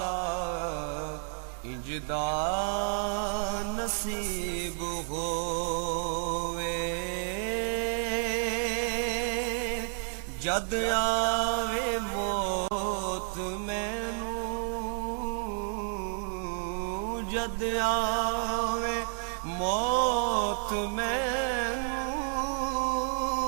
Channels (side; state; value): left; silent; 57 dB below the other